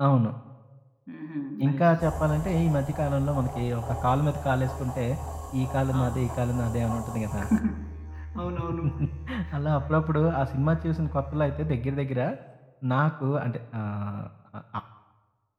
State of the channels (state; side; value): identical; both; correlation 1.00